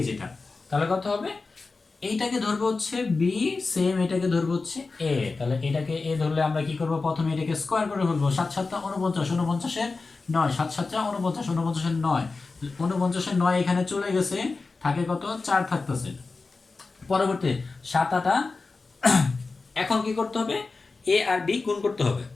যেটা, তাহলে কত হবে, এইটাকে ধরবো হচ্ছে বি, সেম এটাকে ধরবো হচ্ছে এ, তাহলে এটাকে এ ধরলে আমরা কি করব, প্রথমে এটাকে স্কোয়ার করে ফেলবো, 7 7 49, 49 এর 9, 7 7 49, 49 এর 9, 49 এর 9 এখানে চলে গেছে, থাকে কত 4 থাকতেছে। পরবর্তী 7 8, এখন কি করতে হবে, এ আর বি গুণ করতে হবে।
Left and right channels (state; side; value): quieter; right; 4.0 dB